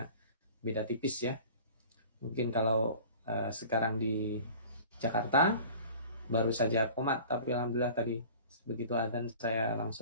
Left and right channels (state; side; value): inverted; both; correlation -0.43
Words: beda tipis ya. Mungkin kalau sekarang di Jakarta baru saja komat, tapi alhamdulillah tadi begitu adzan saya